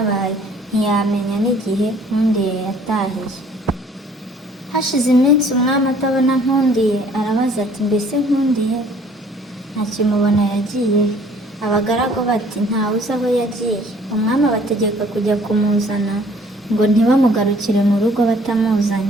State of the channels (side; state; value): both; normal; correlation 0.56